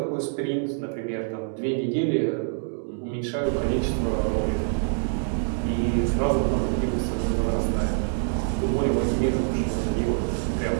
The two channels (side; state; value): left; silent; digital silence